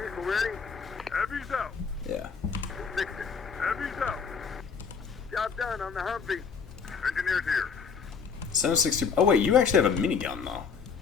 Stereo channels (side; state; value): right; quieter; 6.0 dB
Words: out. Yeah. Fix it. Heavy's out. Job done on the Humvee. Engineers here. 760... Oh wait, you actually have a minigun though.